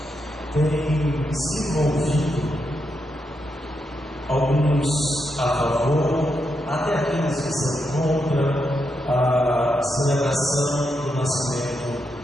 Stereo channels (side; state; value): both; normal; correlation 0.83